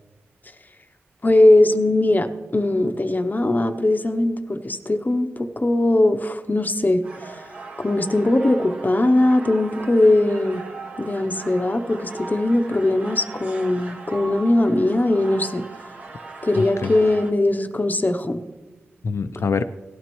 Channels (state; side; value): normal; both; correlation 0.94